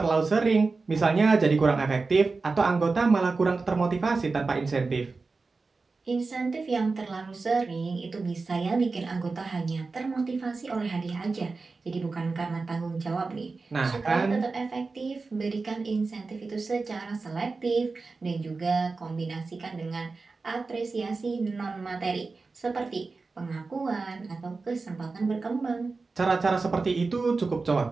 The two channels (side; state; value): left; quieter; 4.0 dB